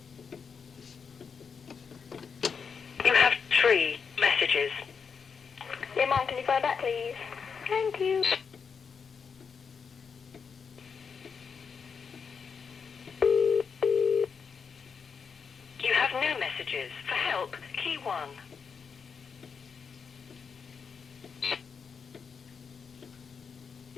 You have 3 messages. Yeah, Mom, can you phone back, please? Thank you. You have no messages. For help, key 1.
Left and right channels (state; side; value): quieter; right; 6.0 dB